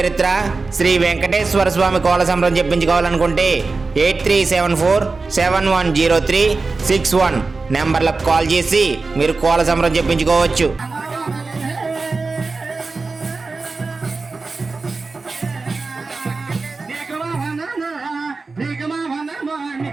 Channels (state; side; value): quieter; left; 4.0 dB